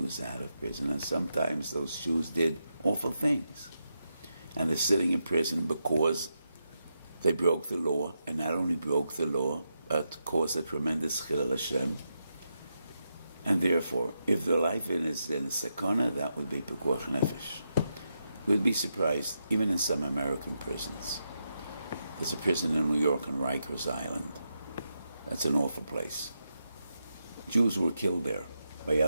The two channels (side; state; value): both; inverted; correlation -0.85